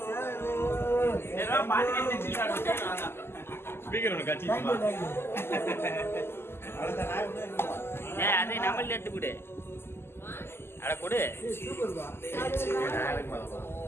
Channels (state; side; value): late; right; 0.12 ms